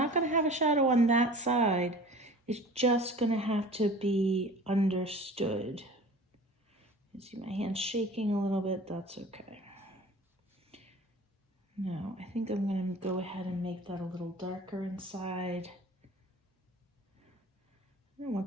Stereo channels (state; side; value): normal; both; correlation 0.42